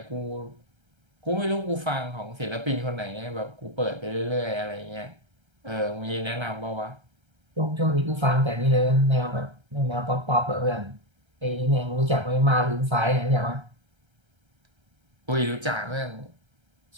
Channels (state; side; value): late; left; 1.3 ms